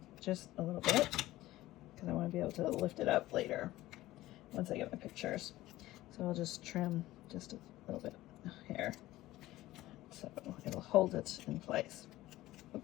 just a little bit because I want to be able to lift it up later once I get my pictures. So I'll just trim just a little bit here so it'll hold it in place.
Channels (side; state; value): right; quieter; 16.5 dB